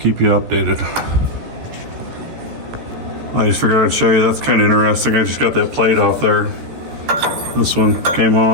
you updated. I just figured I'd show you, that's kind of interesting. I just got that plate off there. This one came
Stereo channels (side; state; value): left; late; 14 ms